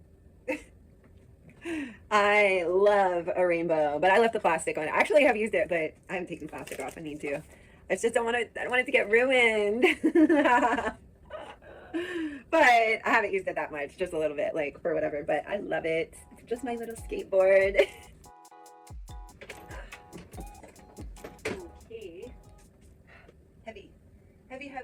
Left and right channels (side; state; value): both; identical; correlation 1.00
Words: I love a rainbow, but I left the plastic on it. Actually, I have used it, but I haven't taken plastic off. I need to. I just don't want it. I don't want it to get ruined. But I haven't used it that much, just a little bit, like for whatever. But I love it. It's just my little skateboard. Okay. Heavy, heavy,